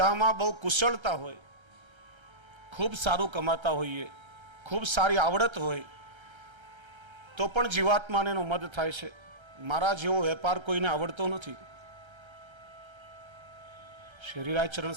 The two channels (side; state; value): left; late; 1.3 ms